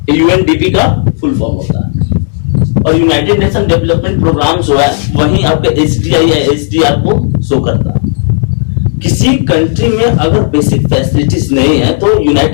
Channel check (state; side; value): silent; right; digital silence